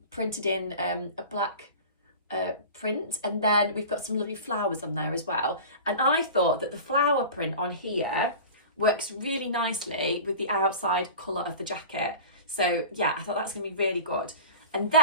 printed in a black print. And then we've got some lovely flowers on there as well. And I thought that the flower print on here works really nicely with the outside colour of the jacket. So yeah, I thought that's going to be really good. And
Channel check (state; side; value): inverted; both; correlation -0.35